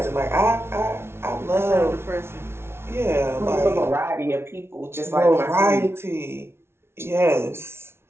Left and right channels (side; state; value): left; late; 0.12 ms